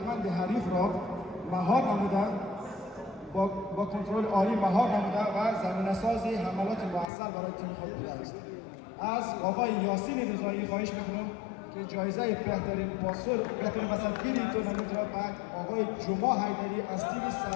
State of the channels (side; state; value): right; drops out; at 7.1 s